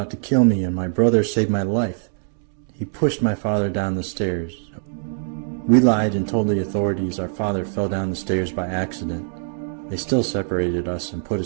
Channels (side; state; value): left; silent; 59 dB below the other